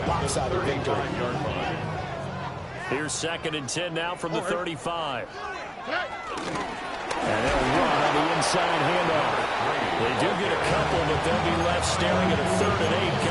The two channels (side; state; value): both; identical; correlation 1.00